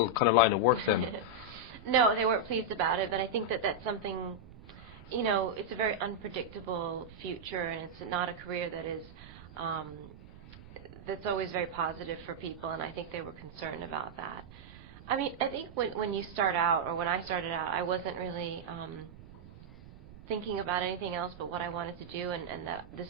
kind of line of work then? No, they weren't pleased about it, but I think that that's something, it's a very unpredictable future, and it's not a career that is, that's always very positive for people, and I think they were concerned about that. I mean, I think when you start out, or when I started out, I wasn't really thinking about anything else but what I wanted to do, and that this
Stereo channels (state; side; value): noise; right; rumble, 18 dB below the sound